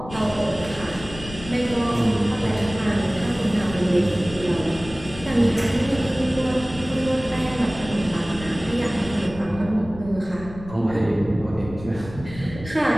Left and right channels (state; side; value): noise; left; rumble, 14 dB below the sound